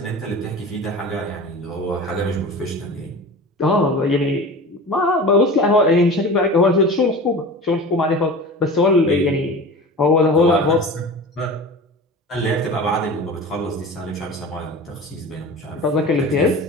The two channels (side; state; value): both; normal; correlation 0.35